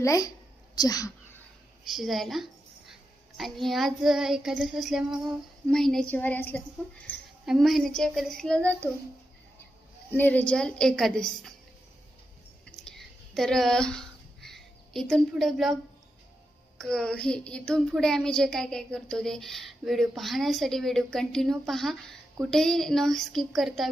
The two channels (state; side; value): normal; both; correlation 0.87